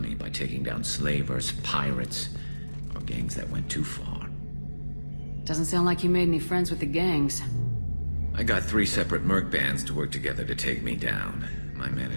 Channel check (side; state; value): both; inverted; correlation -1.00